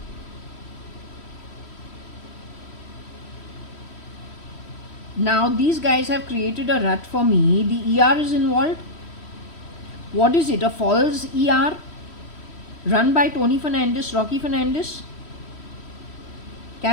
Now these guys have created a rut for me. The ER is involved. What is it? A false ER run by Tony Fernandez, Rocky Fernandez?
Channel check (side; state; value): right; late; 3.1 ms